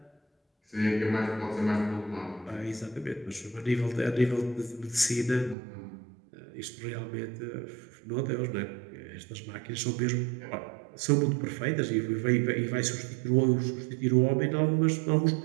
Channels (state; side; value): drops out; left; at 5.6 s